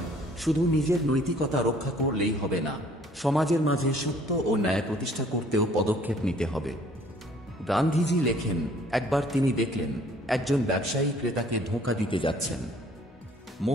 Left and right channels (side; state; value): both; normal; correlation 0.57